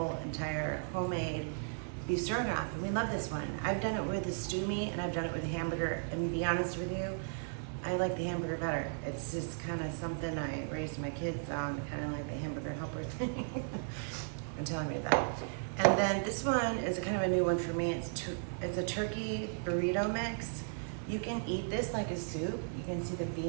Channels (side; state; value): left; silent; 54 dB below the other